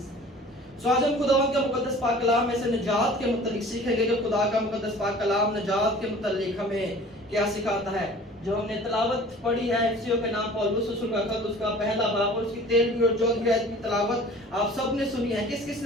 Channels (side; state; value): both; normal; correlation 0.46